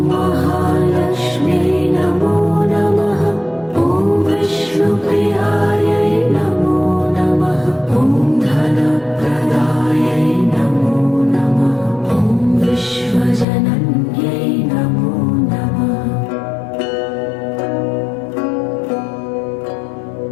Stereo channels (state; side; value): drops out; right; at 13.5 s